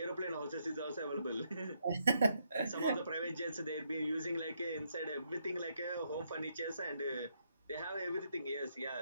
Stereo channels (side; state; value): both; inverted; correlation -0.76